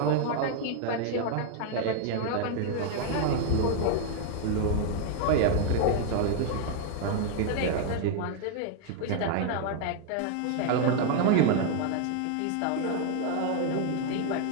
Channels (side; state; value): both; different; correlation 0.00